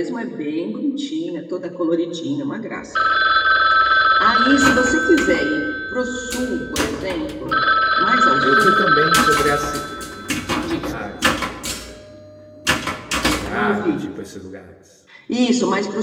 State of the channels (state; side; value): identical; both; correlation 1.00